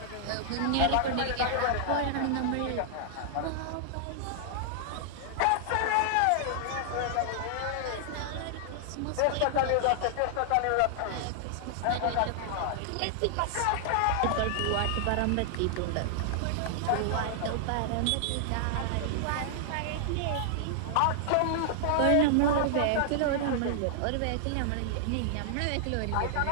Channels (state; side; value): different; both; correlation -0.01